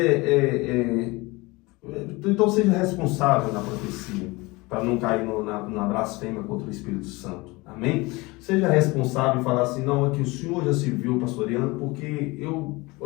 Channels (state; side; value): quieter; right; 23.5 dB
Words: então seja responsável na profecia, para não cair na blasfêmia contra o Espírito Santo, amém? Seja responsável e falar assim, não, é que o Senhor já se viu pastoreando, porque eu